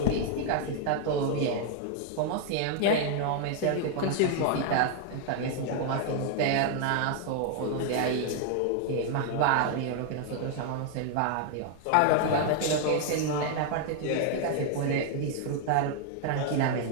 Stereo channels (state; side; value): different; both; correlation 0.00